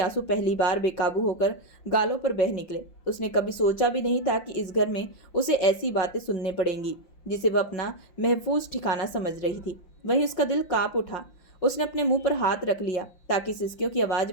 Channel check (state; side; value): late; right; 5.7 ms